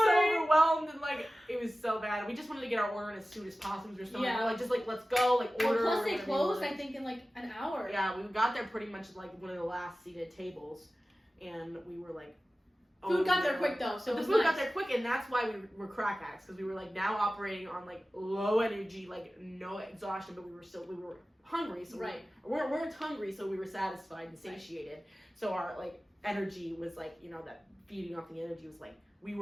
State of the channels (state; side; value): normal; both; correlation 0.96